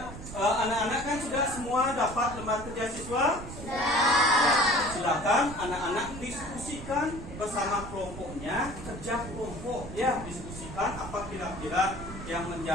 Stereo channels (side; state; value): right; noise; rumble, 11 dB below the sound